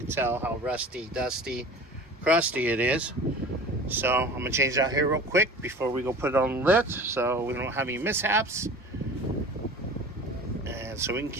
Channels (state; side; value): normal; both; correlation 0.40